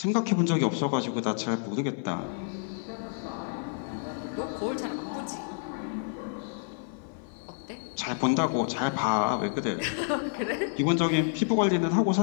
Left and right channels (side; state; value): right; silent; 55 dB below the other